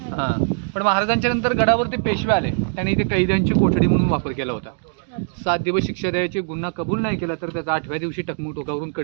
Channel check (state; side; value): silent; left; digital silence